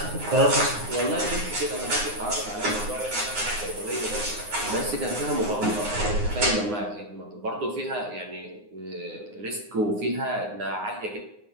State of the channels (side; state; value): left; late; 9.6 ms